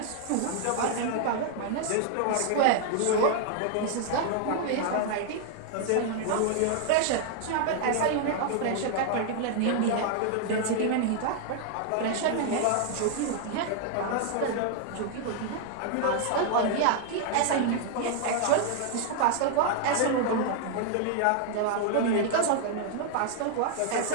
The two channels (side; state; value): both; different; correlation 0.00